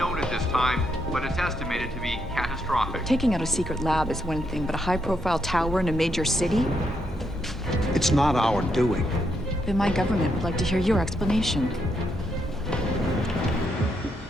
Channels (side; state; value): both; normal; correlation 0.78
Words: at this time, but it's estimated to be catastrophic. Taking out a secret lab is one thing, but a high-profile tower in a major city? It's not our doing. Then my government would like to hear your explanation.